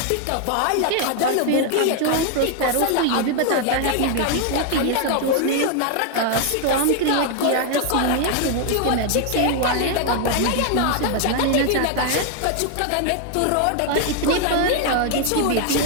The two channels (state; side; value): different; both; correlation 0.00